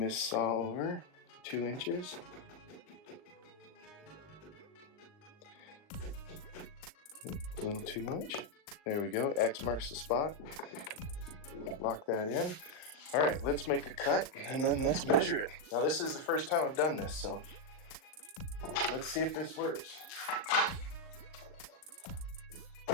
saw over 2 inches. A little too much. There we go. X marks the spot. Lock that in. All right, let's make a cut and then let's measure it. Now this is the first time I've done this, so let's see if this works.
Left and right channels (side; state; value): right; late; 39 ms